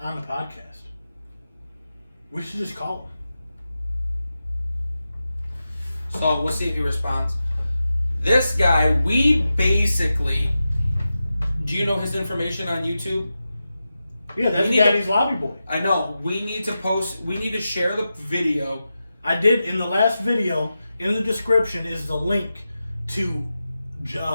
on the podcast. We should just call him. So we'll see if he responds. This guy, we basically. Do you know his information on YouTube? Yeah, that's Daddy's Lobby Boy. I know. We need to share the video. I did in the last video. In the description is the link to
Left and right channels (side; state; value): both; inverted; correlation -0.91